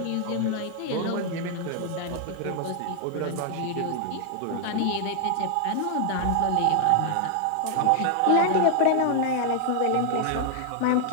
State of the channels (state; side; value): different; both; correlation 0.00